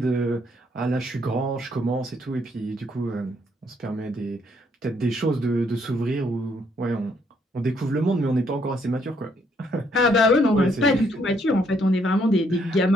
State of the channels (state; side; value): normal; both; correlation 0.70